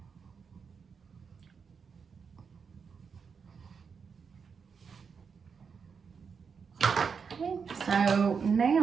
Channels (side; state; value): left; quieter; 6.0 dB